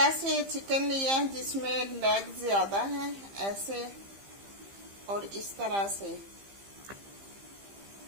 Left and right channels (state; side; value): late; left; 15 ms